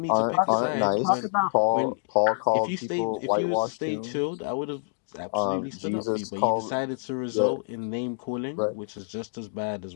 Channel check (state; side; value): silent; right; digital silence